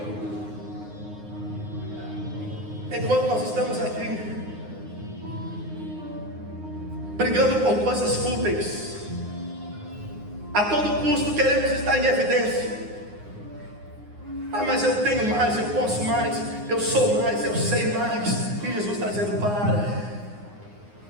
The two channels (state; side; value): late; left; 9.6 ms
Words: enquanto nós estamos aqui brigando por coisas fúteis, a todo custo queremos estar em evidência. Mas eu tenho mais, eu posso mais, eu sou mais, eu sei mais. E Jesus está dizendo: